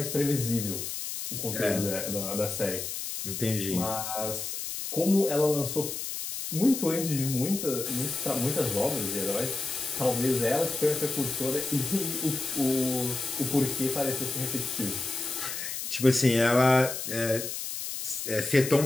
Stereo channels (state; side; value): noise; left; hiss, 5 dB below the sound